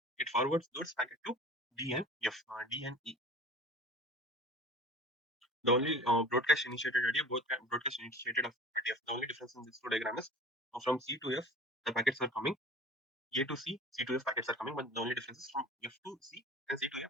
it forwards those packet to D and F, D and E. The only broadcast initiated idea, both broadcast initiated of F. The only difference in this two diagram is from C to F, the packets are coming. A to C, C to F packets are coming, but the only difference is from F to C and C to A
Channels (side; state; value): both; normal; correlation 0.40